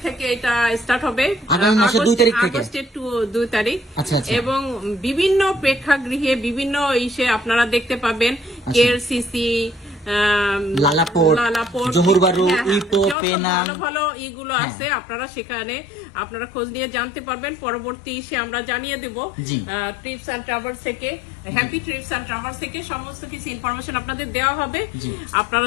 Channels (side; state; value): right; drops out; at 13.2 s